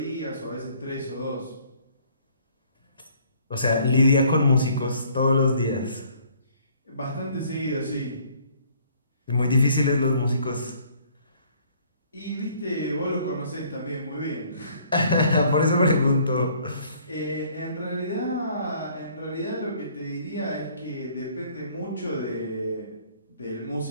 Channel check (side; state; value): both; inverted; correlation -0.59